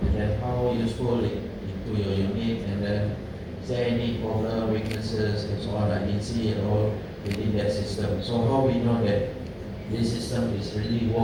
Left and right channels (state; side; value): identical; both; correlation 1.00